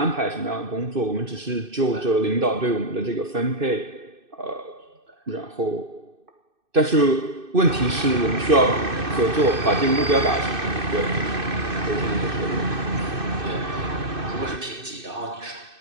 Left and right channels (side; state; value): left; late; 2.6 ms